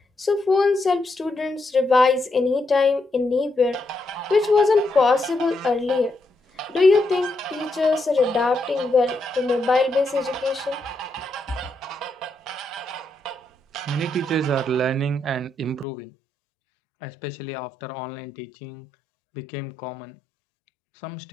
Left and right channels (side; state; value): right; drops out; at 15.9 s